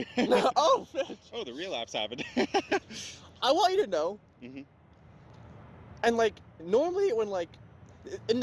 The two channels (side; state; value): both; identical; correlation 1.00